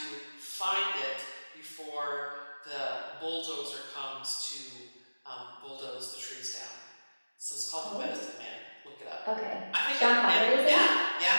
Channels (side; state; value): both; inverted; correlation -1.00